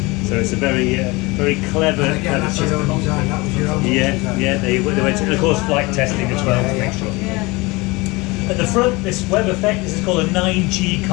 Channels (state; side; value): quieter; right; 23.8 dB